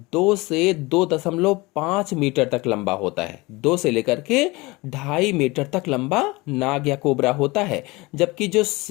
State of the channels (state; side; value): quieter; right; 23.2 dB